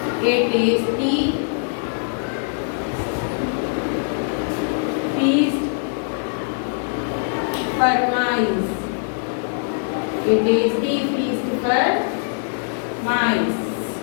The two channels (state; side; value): silent; right; digital silence